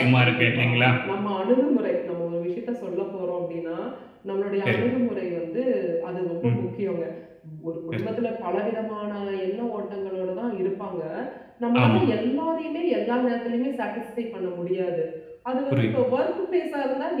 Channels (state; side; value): identical; both; correlation 1.00